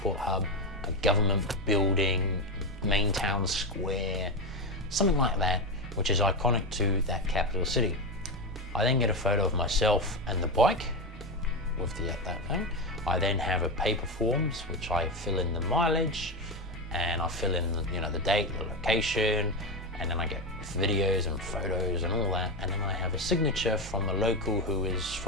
hub, a government building, main town square, something like that, which is iconic to that capital city. I then get a photo of myself and the bike with that thing. I then have a paper forms which I fill in the mileage and I fill in the date, the location, and then I get videos and photos and all that, and then I have a signature from the local who is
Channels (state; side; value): normal; both; correlation 0.13